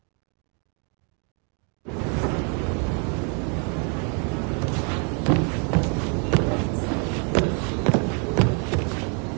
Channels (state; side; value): quieter; left; 38.9 dB